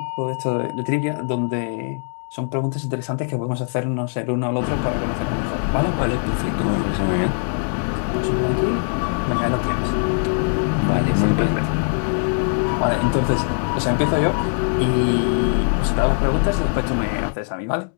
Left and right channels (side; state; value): right; silent; digital silence